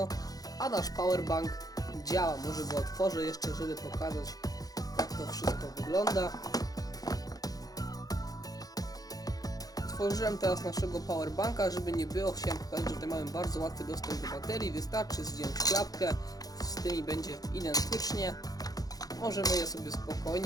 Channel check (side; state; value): right; late; 0.18 ms